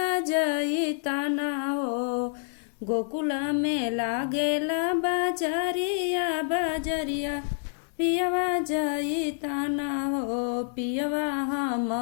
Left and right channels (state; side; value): silent; right; digital silence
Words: जई ताना हो। गोकुला में लागेला बाजारिया बाजरिया पियवा जई ताना हो। पियवा हम